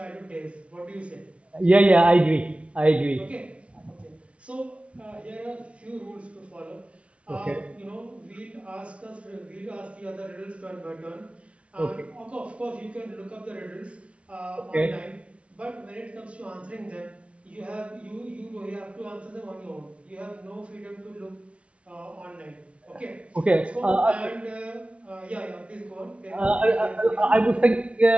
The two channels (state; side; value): late; left; 0.062 ms